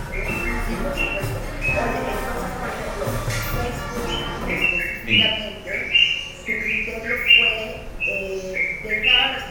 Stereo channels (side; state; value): both; identical; correlation 1.00